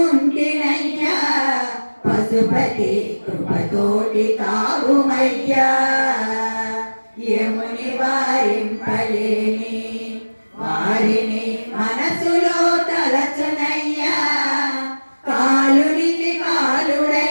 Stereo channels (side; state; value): both; inverted; correlation -1.00